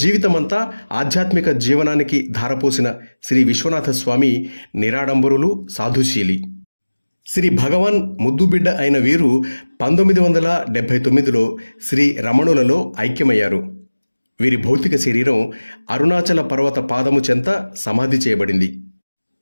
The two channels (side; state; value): both; inverted; correlation -1.00